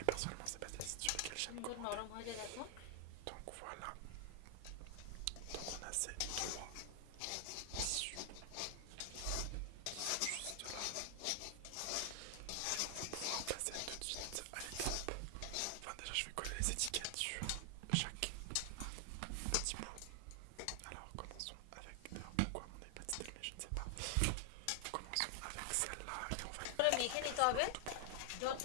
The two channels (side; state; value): both; different; correlation 0.00